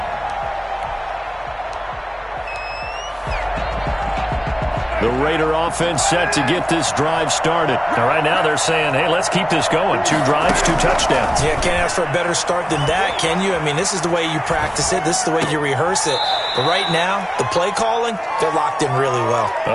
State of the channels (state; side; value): identical; both; correlation 1.00